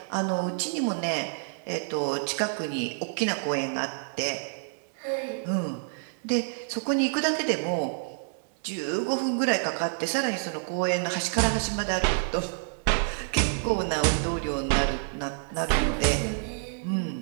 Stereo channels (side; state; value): left; silent; digital silence